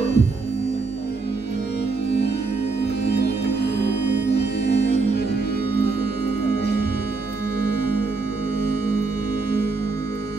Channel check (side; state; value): left; quieter; 4.1 dB